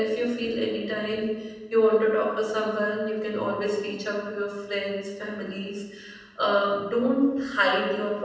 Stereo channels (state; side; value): identical; both; correlation 1.00